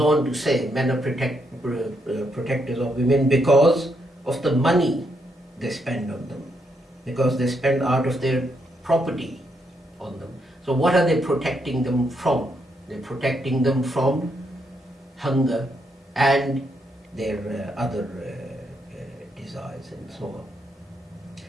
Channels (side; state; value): both; normal; correlation 0.78